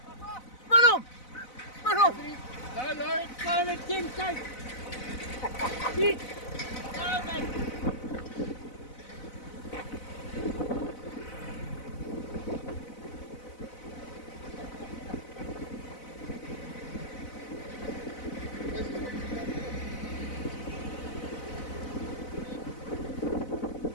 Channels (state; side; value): late; right; 4.0 ms